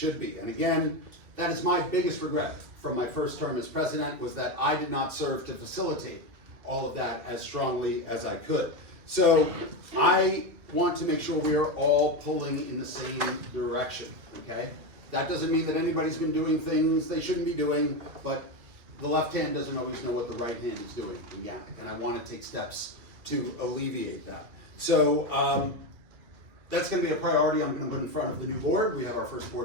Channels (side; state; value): left; late; 2.5 ms